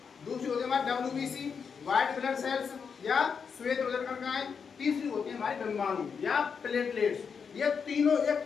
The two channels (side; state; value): right; quieter; 6.2 dB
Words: दूसरी होती है हमारी WBC, व्हाइट ब्लड सेल्स या श्वेत उदर कण का है। तीसरी होती है हमारी डिम्बाणु या प्लेटलेट्स। ये तीनों एक